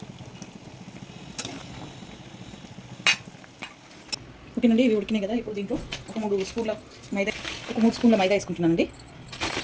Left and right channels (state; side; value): identical; both; correlation 1.00